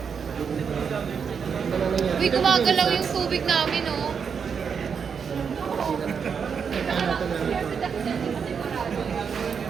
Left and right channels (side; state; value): left; quieter; 6.5 dB